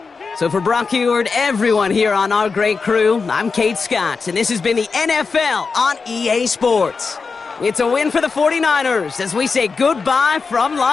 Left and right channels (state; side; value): quieter; right; 4.8 dB